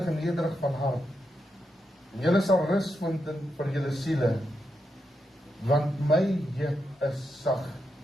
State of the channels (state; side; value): normal; both; correlation 0.84